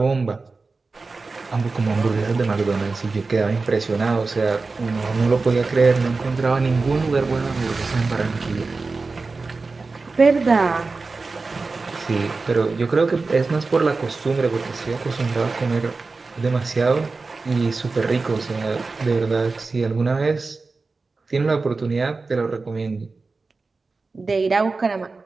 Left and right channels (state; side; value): quieter; left; 4.0 dB